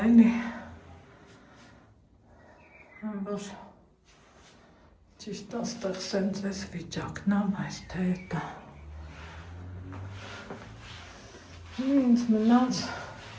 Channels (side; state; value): both; identical; correlation 1.00